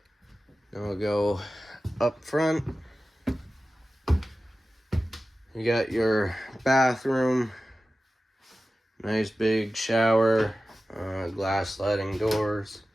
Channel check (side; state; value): both; normal; correlation 0.95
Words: we'll go up front. You got your bathroom. Nice big shower. Glass sliding doors.